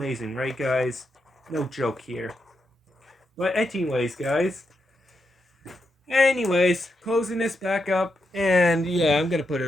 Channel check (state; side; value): normal; both; correlation 0.84